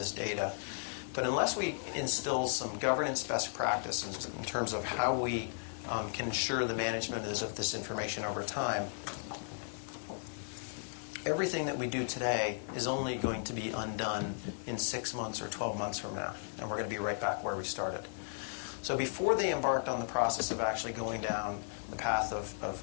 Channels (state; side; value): silent; right; digital silence